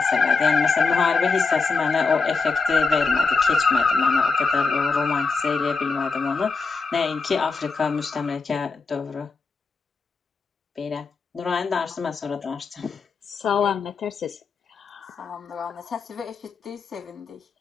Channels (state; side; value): quieter; right; 4.5 dB